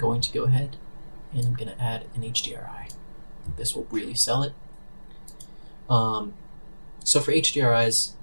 to go ahead and I'm going to add an HDRI. This will really sell it. So for HDRIs,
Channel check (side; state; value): both; inverted; correlation -1.00